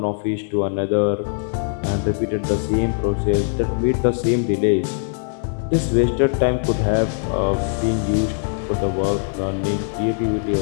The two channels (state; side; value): silent; right; 65 dB below the other